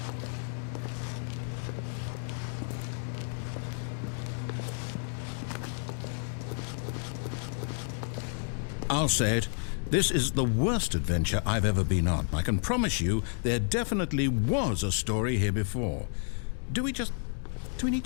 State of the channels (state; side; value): silent; right; 57 dB below the other